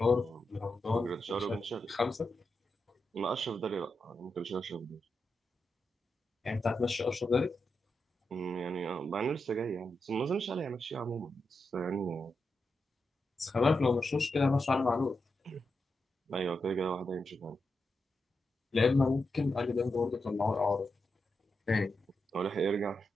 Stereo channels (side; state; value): both; normal; correlation 0.87